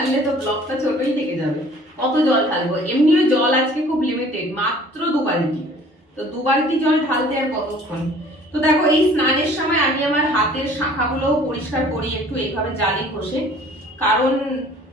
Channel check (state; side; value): normal; both; correlation 0.52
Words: তো ব্লগটা ছোটই থেকে যাবে। কত জল ঢালবো? এমনিও জল আজকে খুব লিমিটেড, মাত্র 2 বালতি। তো 2 বালতি জল ঢালতে আর কতক্ষণ? তো দেখো, এই স্নানের সময় আমি আমার হাতের শাখাগুলোও পরিষ্কার করি একটু এইভাবে জালি ঘষে, কারণ